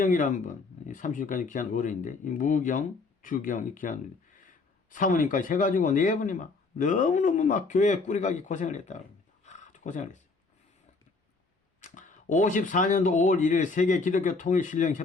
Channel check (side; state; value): right; quieter; 4.0 dB